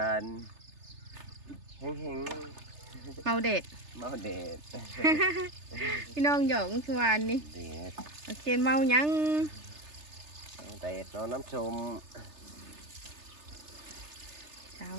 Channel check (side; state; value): left; late; 3.3 ms